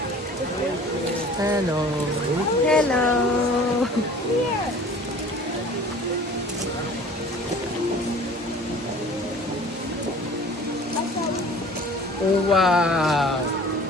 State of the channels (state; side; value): normal; both; correlation 0.46